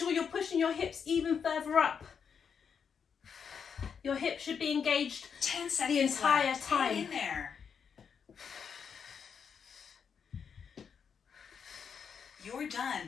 you're pushing your hips even further up. Your hips should be engaged 10 seconds entire left. time. Hang in there. You're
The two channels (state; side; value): quieter; right; 6.8 dB